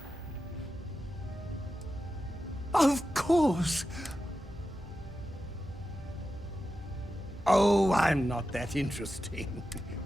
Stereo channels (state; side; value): normal; both; correlation 0.91